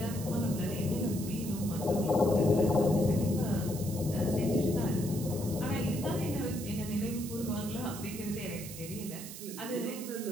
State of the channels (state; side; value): noise; right; hiss, 11 dB below the sound